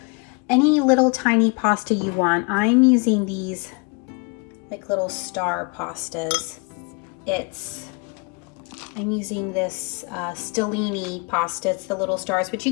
any little tiny pasta you want. I'm using these like little star pastas. I'm using this Stellini pasta. It's the little stars, but you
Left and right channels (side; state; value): right; quieter; 31.7 dB